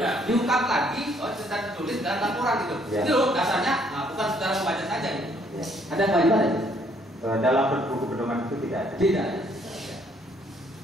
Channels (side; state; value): both; normal; correlation 0.66